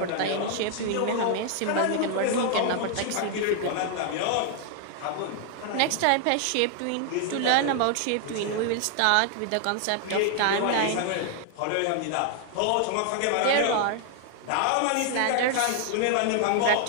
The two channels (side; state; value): both; different; correlation 0.00